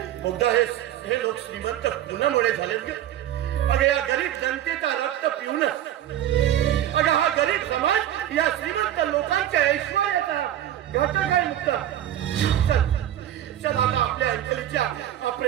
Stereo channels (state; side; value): quieter; left; 11.9 dB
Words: मुद्दा हे लोक श्रीमंत कुणामुळे झालेत ग? अगं या गरीब जनतेचा रक्त पिऊनच. अगं हा गरीब समाज या श्रीमंत लोकांच्या ऐश्वर्याचा घटक आहे. मुद्दा चल आता आपल्या अंजलीच्या